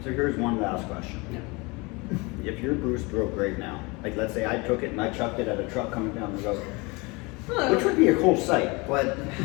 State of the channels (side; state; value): right; quieter; 26.6 dB